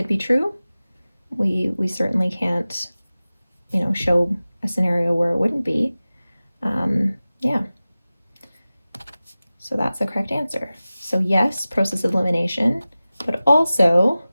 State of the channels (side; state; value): both; inverted; correlation -0.97